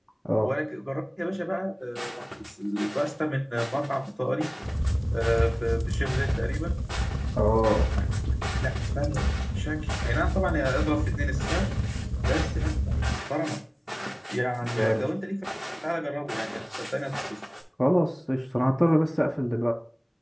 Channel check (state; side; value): identical; both; correlation 1.00